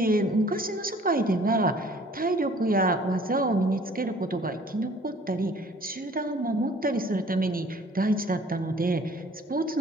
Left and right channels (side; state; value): both; normal; correlation 0.53